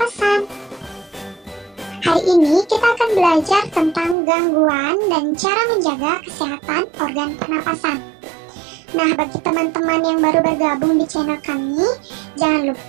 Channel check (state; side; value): drops out; left; at 4.2 s